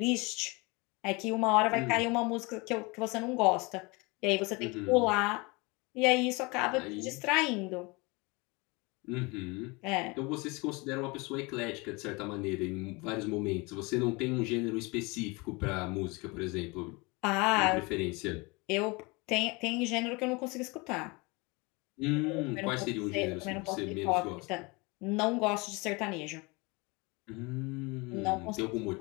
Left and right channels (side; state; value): right; quieter; 26.7 dB